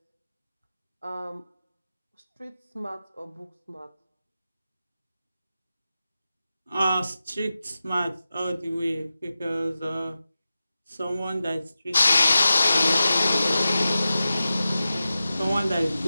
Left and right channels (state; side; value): inverted; both; correlation -0.93